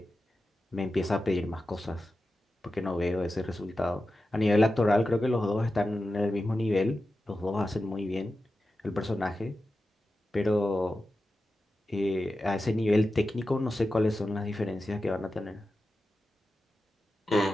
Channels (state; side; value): normal; both; correlation 0.92